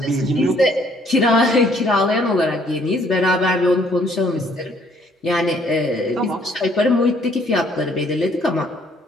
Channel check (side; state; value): both; normal; correlation 0.64